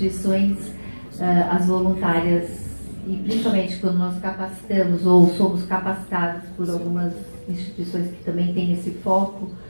as voluntárias, e principalmente quando nós capacitamos ou somos capacitados por algumas instituições que também têm esse foco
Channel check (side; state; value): both; inverted; correlation -1.00